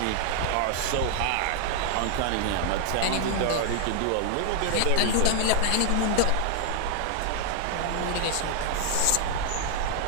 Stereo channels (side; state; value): both; different; correlation 0.00